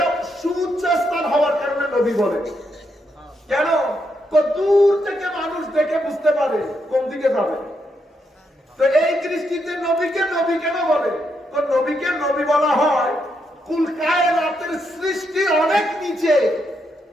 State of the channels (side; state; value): both; normal; correlation 0.79